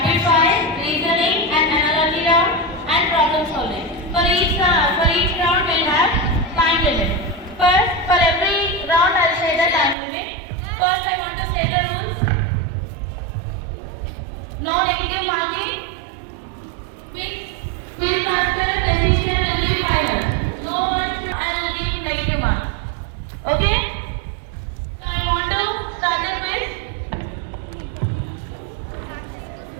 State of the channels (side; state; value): left; drops out; at 10.0 s